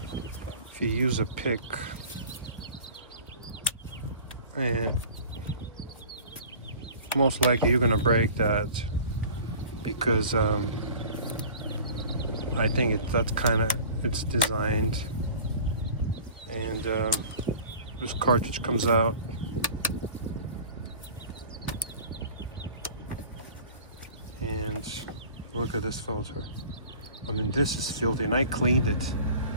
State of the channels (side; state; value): both; inverted; correlation -0.43